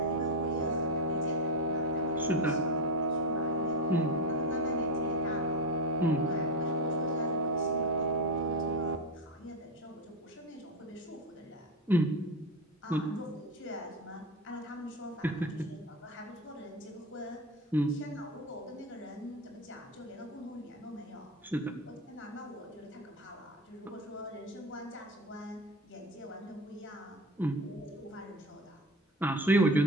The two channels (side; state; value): both; normal; correlation 0.18